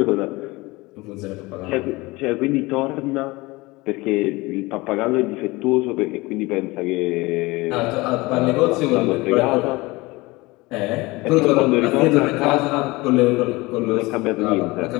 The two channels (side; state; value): right; quieter; 22.2 dB